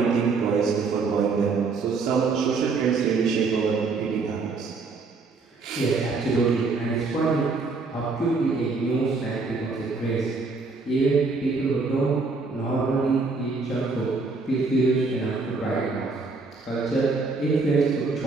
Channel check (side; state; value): left; quieter; 4.1 dB